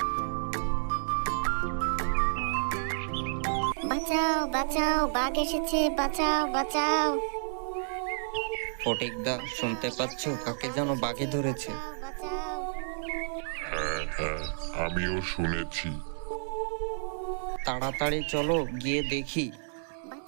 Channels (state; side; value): silent; left; digital silence